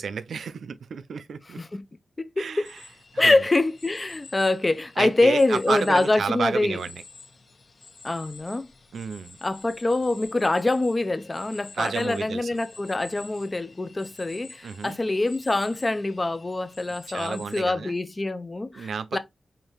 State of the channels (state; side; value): normal; both; correlation 0.96